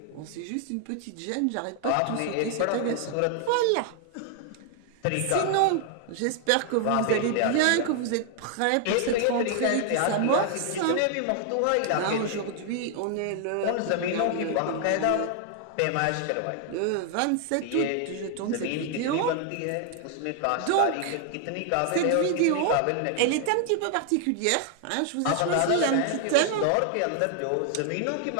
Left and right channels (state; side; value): different; both; correlation 0.00